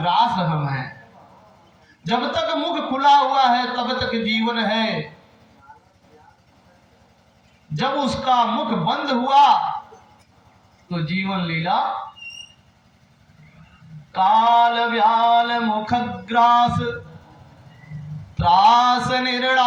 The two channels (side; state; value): both; identical; correlation 1.00